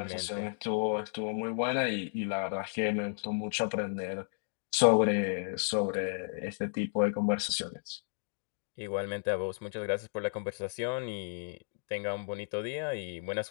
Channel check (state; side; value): silent; right; digital silence